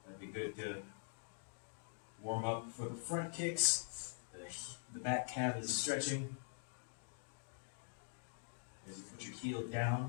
That'd be good to warm up for the front kicks. The back calf is stretching. As you put your heel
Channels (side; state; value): right; silent; digital silence